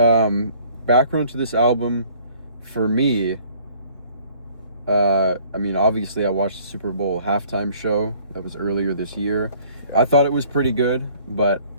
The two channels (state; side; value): inverted; both; correlation -0.56